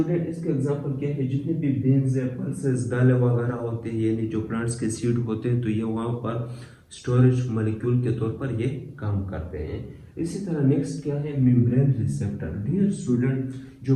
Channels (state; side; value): identical; both; correlation 1.00